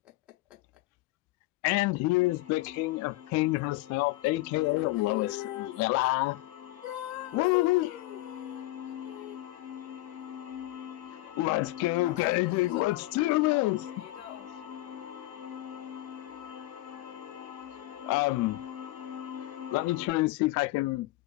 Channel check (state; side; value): quieter; right; 18.3 dB